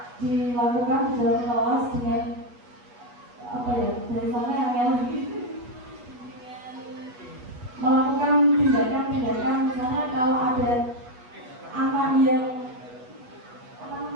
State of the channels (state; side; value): late; left; 8.2 ms